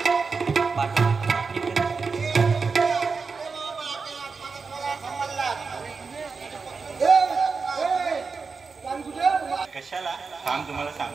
कशाला थांब तुम्हाला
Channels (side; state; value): left; quieter; 4.8 dB